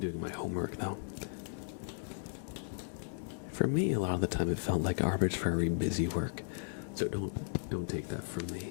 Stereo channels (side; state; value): right; silent; digital silence